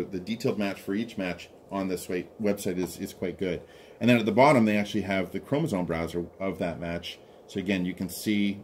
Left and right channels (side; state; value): both; identical; correlation 1.00